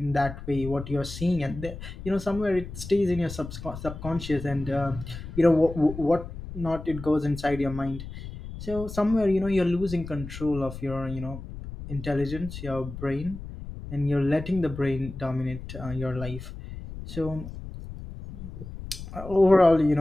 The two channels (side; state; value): left; noise; rumble, 11 dB below the sound